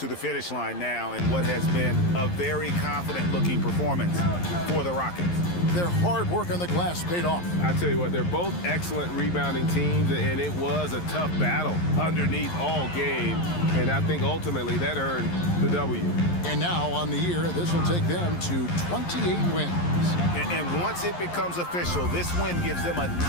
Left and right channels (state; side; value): late; right; 11 ms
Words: the finish line now in what has been a very confident-looking performance for the Rockets. Their hard work on the glass paid off. I tell you what, they're both excellent rebounding teams, and it was a tough battle underneath all game, and I think ultimately that earned the W. And now on the year, this will take them to 28 wins. And once it becomes official, this win gives them a